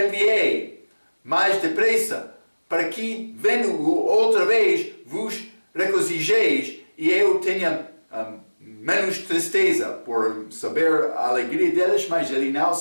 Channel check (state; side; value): inverted; both; correlation -1.00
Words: mais depressa, para que, vendo-o outra vez, vos regozijeis e eu tenha menos tristeza por saber a alegria deles, mas ele não